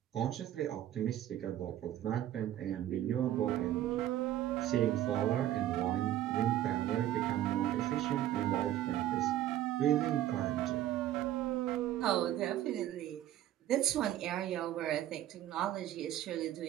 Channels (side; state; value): left; quieter; 12.6 dB